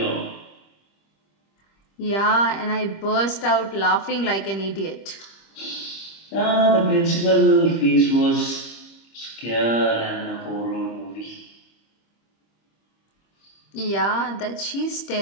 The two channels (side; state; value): right; late; 25 ms